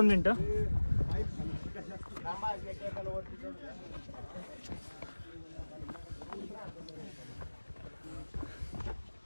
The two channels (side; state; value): both; inverted; correlation -1.00